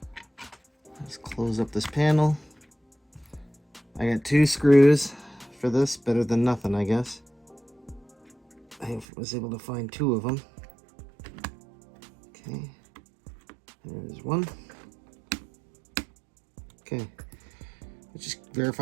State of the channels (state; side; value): drops out; left; at 9.1 s